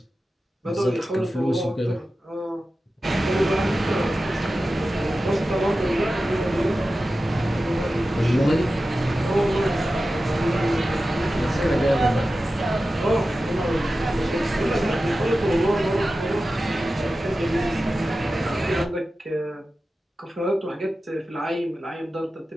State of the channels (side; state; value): both; normal; correlation 0.94